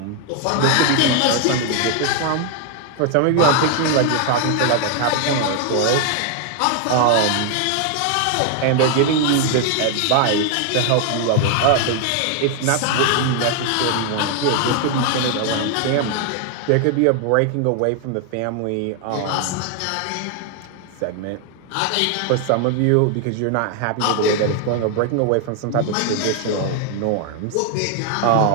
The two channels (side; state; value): both; different; correlation 0.00